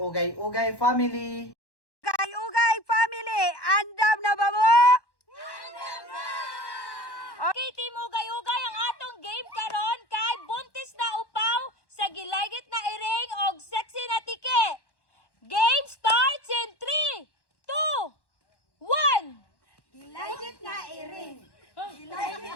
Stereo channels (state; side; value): late; right; 1.1 ms